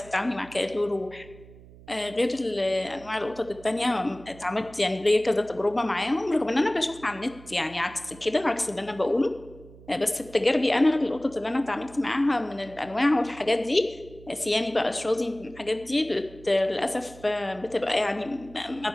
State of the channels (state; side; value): noise; right; hum, 20 dB below the sound